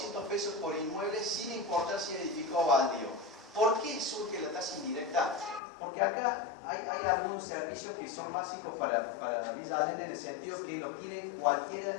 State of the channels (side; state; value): right; drops out; at 5.6 s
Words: pesos por inmueble sin importar si es edificado o baldío. ¿Por qué surge la tasa indirecta? Porque acá hay algunos servicios que son básicos para Villa Allende en el sentido que lo tienen cualquiera